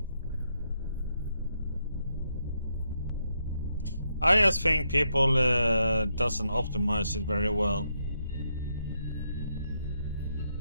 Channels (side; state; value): both; inverted; correlation -0.80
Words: I just think people doesn't optimize it very well.